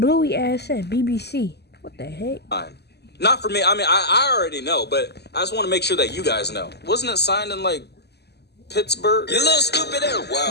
ass said BBC. What the heck? Fine. Not for me. I mean, I already know, but I just want to make sure that you guys know. Wasn't it signed in, like, Pittsburgh? You little stupid ass.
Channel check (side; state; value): right; late; 0.49 ms